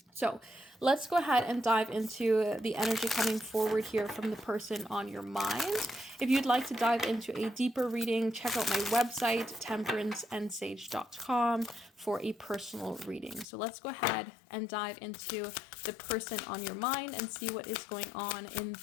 So let's go ahead and dive into the energy coming forward here from the person on your mind. If you'd like to dive into a deeper reading, check out my website, temperanceandsage.com, for a personal reading. So let's go ahead and dive into the person on your mind and see what is going on in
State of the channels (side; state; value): right; drops out; at 13.5 s